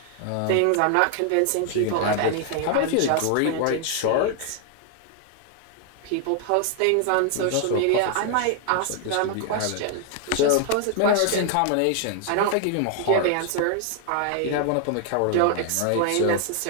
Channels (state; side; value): different; both; correlation 0.00